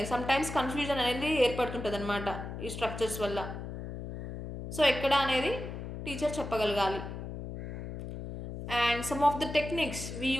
సమ్టైమ్స్ కన్ఫ్యూజన్ అనేది ఏర్పడుతుంటుంది అనమాట ఈ స్ట్రక్చర్స్ వల్ల. సో ఎక్కడ అనేది టీచర్ చెప్పగలగాలి. And some of the techniques we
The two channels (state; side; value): noise; left; hum, 8 dB below the sound